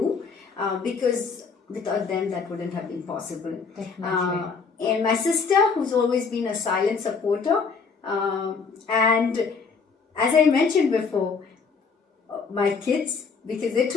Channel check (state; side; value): quieter; right; 5.1 dB